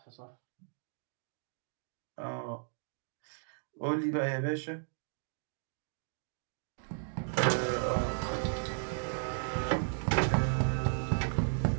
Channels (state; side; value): silent; left; digital silence